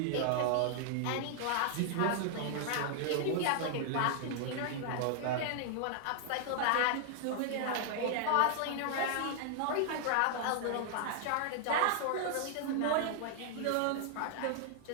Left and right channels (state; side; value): different; both; correlation 0.00